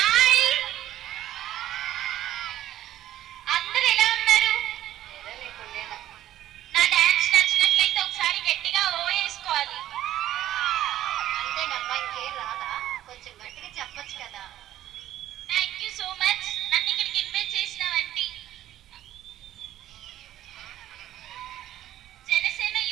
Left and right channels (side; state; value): left; quieter; 12.9 dB